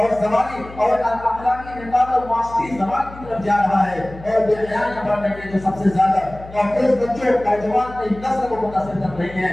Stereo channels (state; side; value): noise; left; hum, 17 dB below the sound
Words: زمانی اور اخلاقی انحطاط اور معاشرتی زوال کی طرف جا رہا ہے اور بے حیائی بڑھنے کے جو سب سے زیادہ نوجوان بچوں نوجوان کی نسل کو متاثر کر رہی